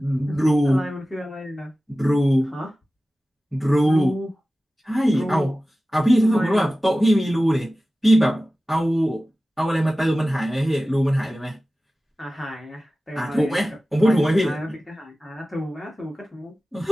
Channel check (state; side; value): normal; both; correlation 0.96